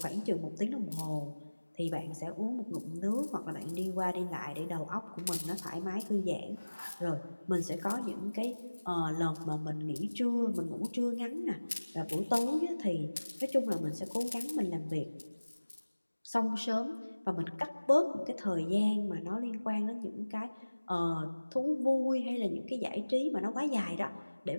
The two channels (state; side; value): inverted; both; correlation -1.00